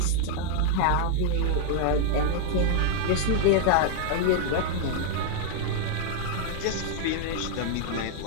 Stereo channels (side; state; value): both; different; correlation 0.00